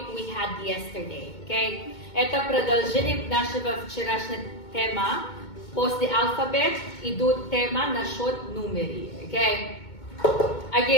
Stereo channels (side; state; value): right; late; 2.2 ms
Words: we had yesterday. Okay? Это продолжение нашего вчерашнего тема. После алфабет идут тема насчет numeri. Okay?